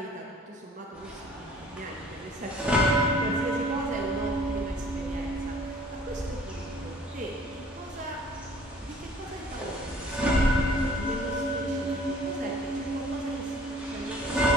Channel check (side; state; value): both; normal; correlation 0.53